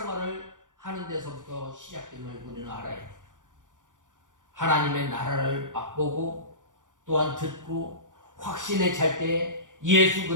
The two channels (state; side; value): late; left; 0.87 ms